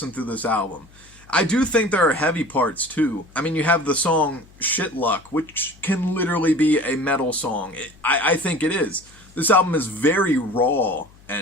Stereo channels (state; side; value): noise; left; hum, 26 dB below the sound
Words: through this album. I do think there are heavy parts too. I mean, you have the song Shit Luck, which can literally be a metal song. I think it is. This album is very raw,